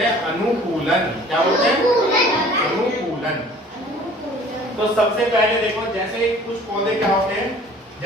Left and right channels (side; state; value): both; normal; correlation 0.50